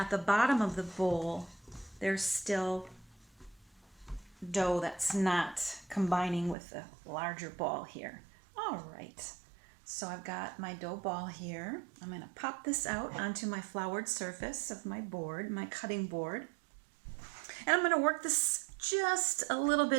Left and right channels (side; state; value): left; drops out; at 6.6 s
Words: the bottom of the bowl, there's still dough that's not combining with the larger ball here. All right, so I've got my dough ball here. I'm going to pop this out onto my floured surface of my board, my cutting board. And I'm going to work this just a little